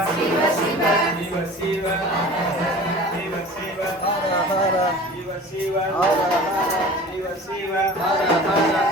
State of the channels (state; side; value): normal; both; correlation 0.41